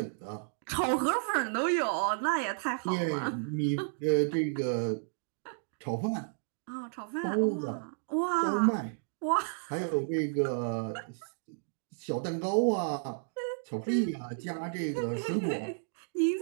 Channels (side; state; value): left; silent; digital silence